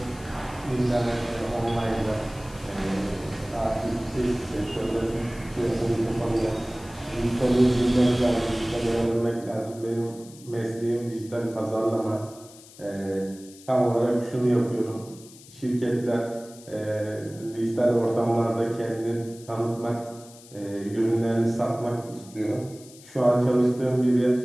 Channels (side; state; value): left; noise; hiss, 21 dB below the sound